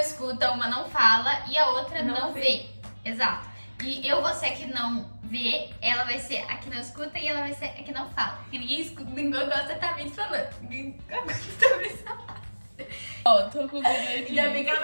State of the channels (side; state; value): both; inverted; correlation -1.00